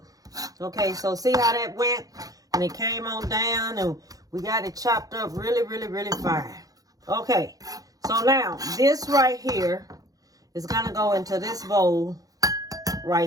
Okay, so see how that went? And it came on down and we got it chopped up really, really, really fine. Okay, so now this right here is going to go into this bowl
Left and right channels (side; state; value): left; late; 0.17 ms